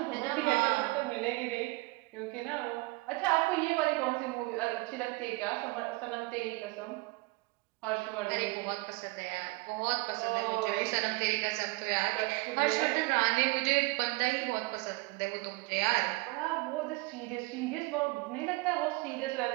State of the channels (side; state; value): left; quieter; 24.1 dB